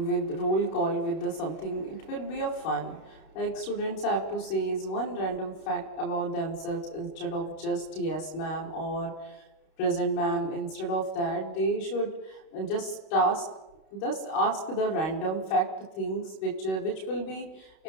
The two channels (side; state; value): right; late; 32 ms